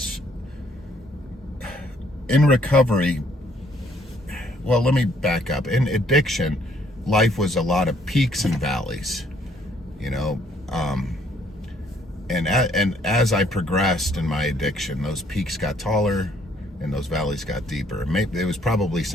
in recovery, well, let me back up. In addiction, life was a lot of peaks and valleys, and as I progressed in my addiction, those peaks got taller and those valleys got deeper. Maybe it was probably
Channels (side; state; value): both; normal; correlation 0.65